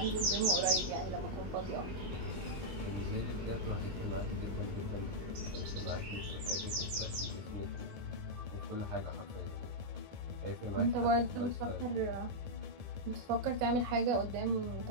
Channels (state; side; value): late; left; 22 ms